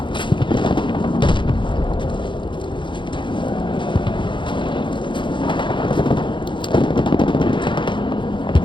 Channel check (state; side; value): late; right; 0.23 ms